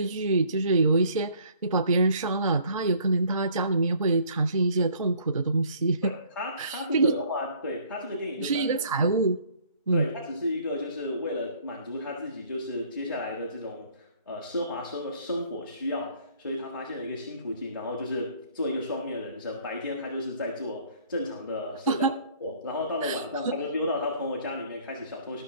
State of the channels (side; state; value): both; inverted; correlation -0.58